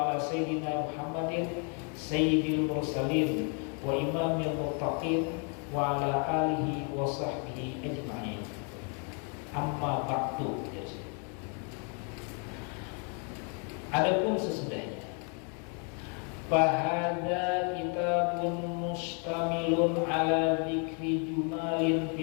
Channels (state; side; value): quieter; right; 39.2 dB